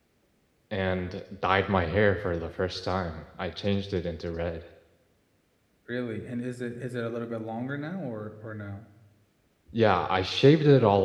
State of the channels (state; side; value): identical; both; correlation 1.00